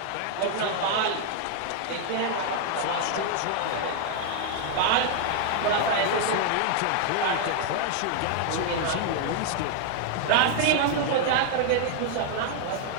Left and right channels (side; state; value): both; different; correlation 0.00